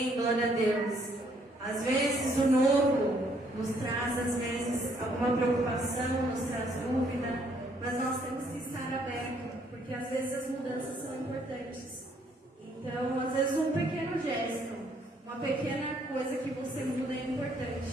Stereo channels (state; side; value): normal; both; correlation 0.67